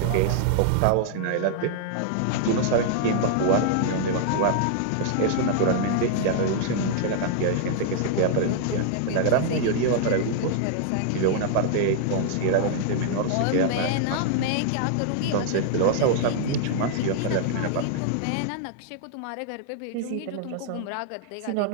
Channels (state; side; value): different; both; correlation -0.01